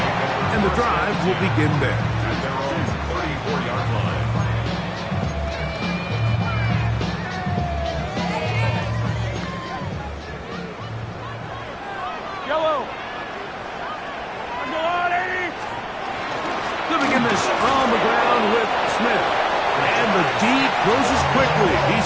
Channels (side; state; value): both; identical; correlation 1.00